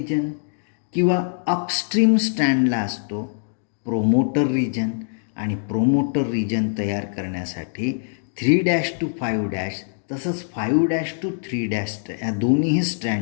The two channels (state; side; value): silent; right; digital silence